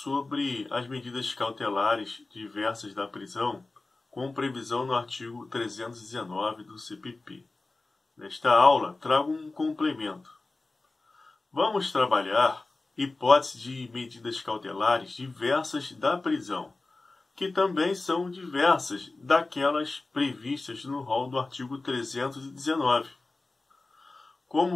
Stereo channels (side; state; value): right; quieter; 3.3 dB